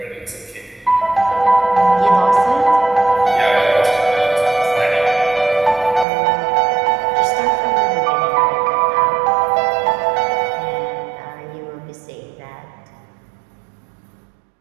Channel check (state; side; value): drops out; left; at 6.1 s